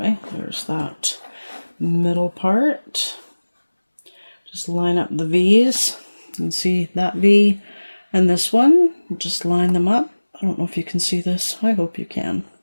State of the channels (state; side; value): inverted; both; correlation -1.00